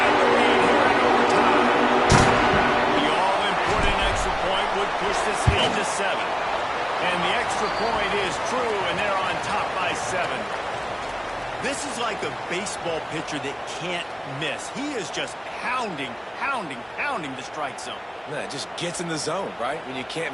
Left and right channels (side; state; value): both; identical; correlation 1.00